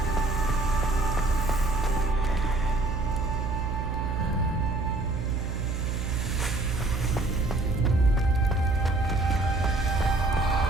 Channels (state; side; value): noise; right; hum, 1 dB below the sound